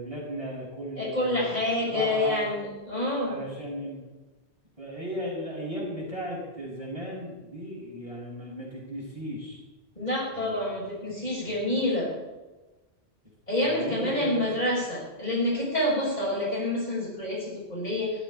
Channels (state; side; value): normal; both; correlation -0.11